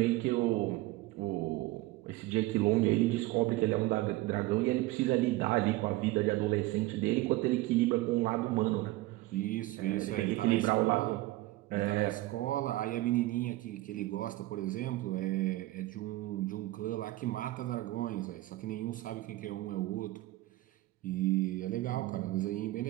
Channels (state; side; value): quieter; left; 18.3 dB